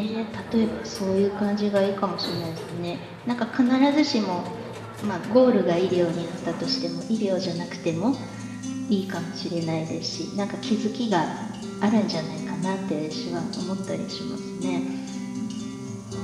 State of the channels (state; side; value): identical; both; correlation 1.00